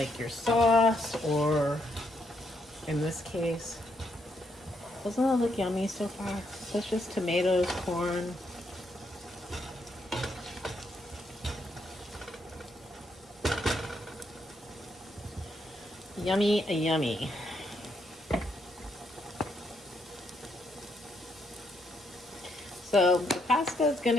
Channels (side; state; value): both; normal; correlation 0.76